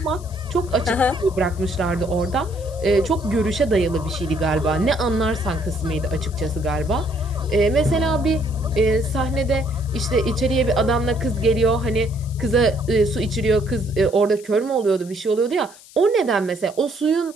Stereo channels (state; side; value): noise; left; hiss, 22 dB below the sound